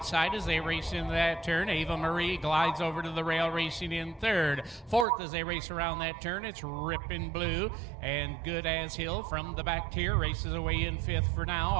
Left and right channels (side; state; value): left; drops out; at 5.1 s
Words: as they race into that turn. Ava Marie glides over to the rail, racing in 3rd. 4th as they race around that turn, it's Rippin' Blue, and Good as Hill from the back tier races away in 5th for now.